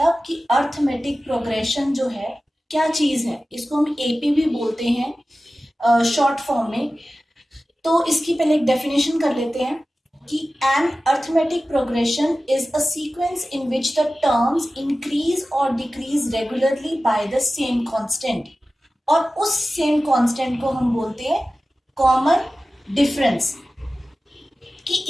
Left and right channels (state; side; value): normal; both; correlation 0.95